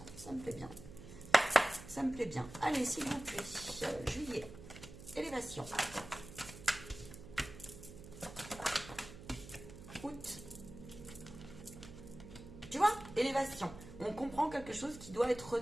ça me plaît bien. Ça me plaît bien. Allez, s'il vous plaît. Juillet. Élévation. Août. Tu vois, élévation. On comprend quelque chose qui doit être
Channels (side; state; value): right; noise; hum, 15 dB below the sound